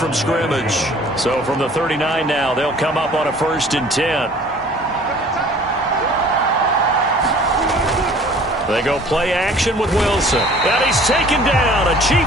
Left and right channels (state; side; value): normal; both; correlation 0.51